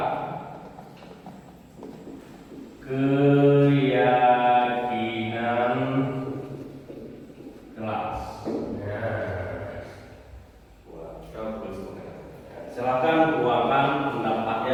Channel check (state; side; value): identical; both; correlation 1.00